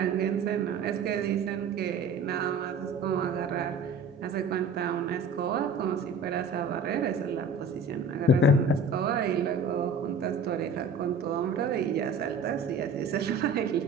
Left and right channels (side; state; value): left; quieter; 3.5 dB